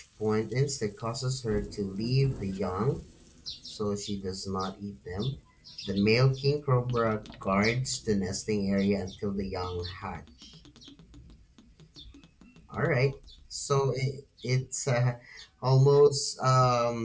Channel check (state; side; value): identical; both; correlation 1.00